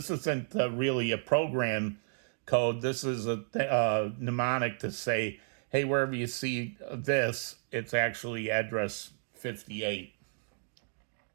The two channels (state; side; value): silent; left; digital silence